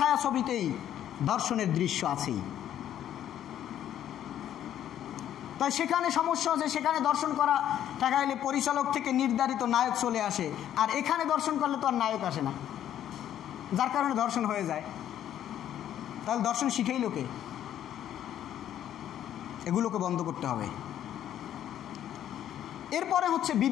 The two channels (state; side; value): quieter; right; 11.0 dB